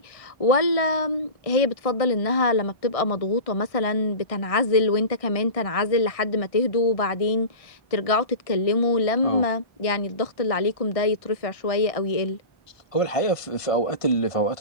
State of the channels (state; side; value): late; right; 1.6 ms